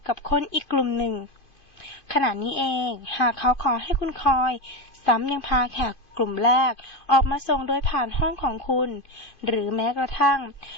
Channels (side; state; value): right; late; 2.5 ms